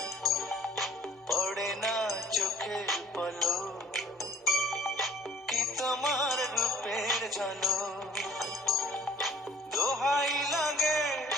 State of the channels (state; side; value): normal; both; correlation 0.54